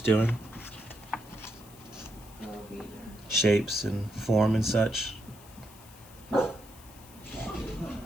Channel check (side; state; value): left; noise; hiss, 21 dB below the sound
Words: doing. Go, Peter. Shapes and form and such.